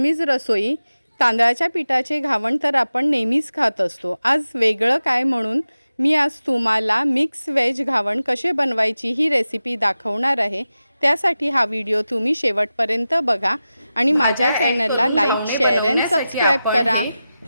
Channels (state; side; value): inverted; both; correlation -0.94